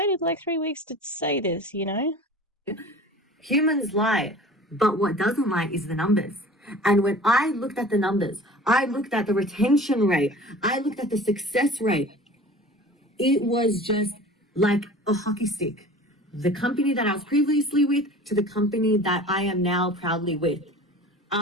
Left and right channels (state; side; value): normal; both; correlation 0.41